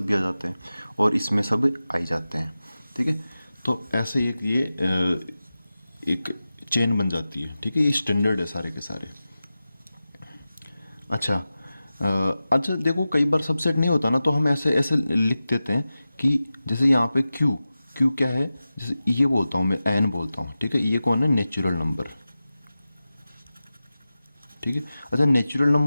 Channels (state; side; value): inverted; both; correlation -0.94